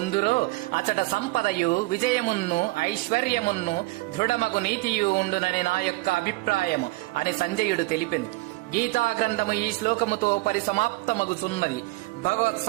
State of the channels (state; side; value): quieter; left; 22.2 dB